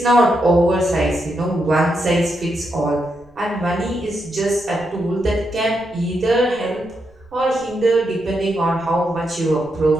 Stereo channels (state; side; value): noise; right; rumble, 28 dB below the sound